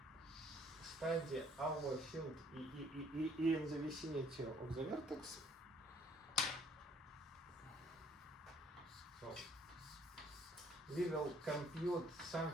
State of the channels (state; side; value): normal; both; correlation 0.62